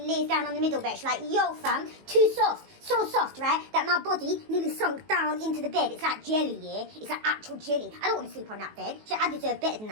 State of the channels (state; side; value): late; left; 19 ms